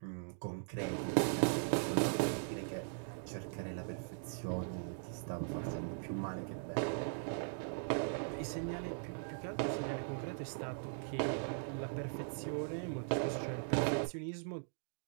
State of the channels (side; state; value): left; silent; digital silence